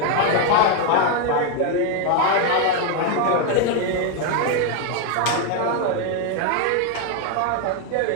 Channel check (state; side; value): different; both; correlation 0.01